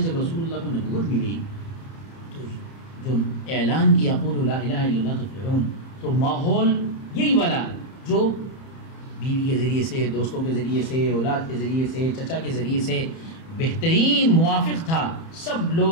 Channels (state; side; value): late; right; 30 ms